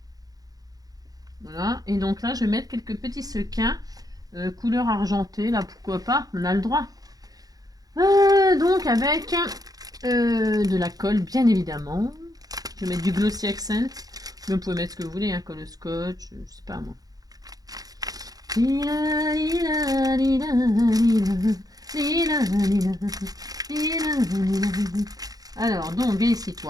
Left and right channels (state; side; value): late; left; 0.18 ms